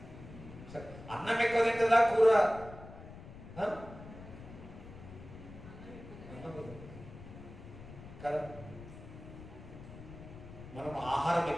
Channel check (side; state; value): left; noise; rumble, 15 dB below the sound